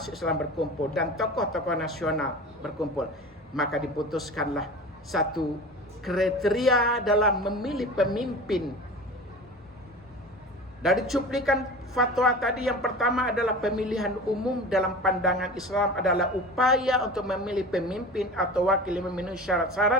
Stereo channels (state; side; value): normal; both; correlation 0.35